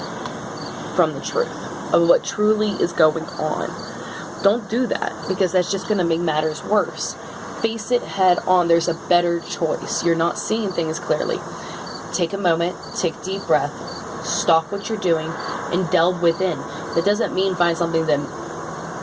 from the truth of what truly is going on. Don't do that, because that's just going to make matters worse. Face it head on. There's a better choice. You're not seeing things clearly. Take a moment, take a deep breath, stop what you're doing, and delve within. That doesn't mean find something that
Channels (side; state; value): both; identical; correlation 1.00